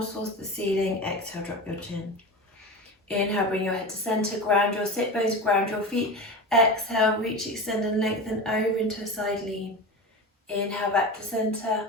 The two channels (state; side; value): normal; both; correlation 0.27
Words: towards the ceiling. Exhale, drop your chin. Inhale, bring your head to center, ground your sit bones, ground your feet. Exhale, reach, extend and lengthen over into a side lean. Inhale, back to center.